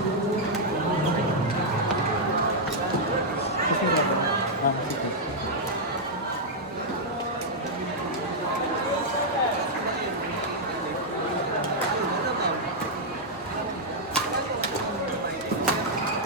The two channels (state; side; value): normal; both; correlation -0.05